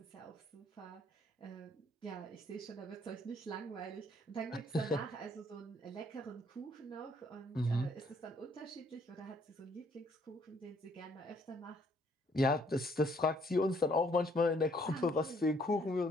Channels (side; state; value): both; normal; correlation 0.66